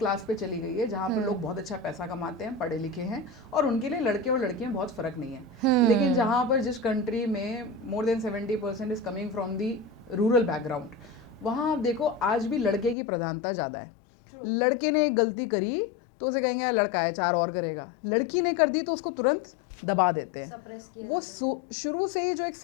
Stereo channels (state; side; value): drops out; right; at 13.0 s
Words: पे चली गई है, जहाँ पर लोग बहुत अच्छा पैसा कमाते हैं, पढ़े लिखे हैं, और उनके लिए लड़के और लड़कियां बहुत फर्क नहीं है। लेकिन जहाँ पर जिस कंट्री में मोर than 70% is coming from the rural background, वहाँ आप देखो आज भी लड़के की प्रधानता ज़्यादा है। लड़के ने एक गलती करी तो उसे कहेंगे यार लड़का है, 4 और करेगा। लड़की ने कर दी तो उसको तुरंत दबा देते हैं, सप्रेस किया जाता है। शुरू से ही जो एक